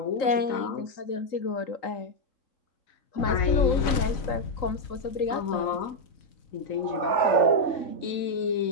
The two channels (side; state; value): right; late; 4.0 ms